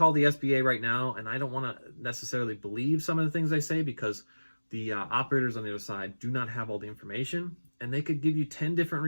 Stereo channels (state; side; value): inverted; both; correlation -1.00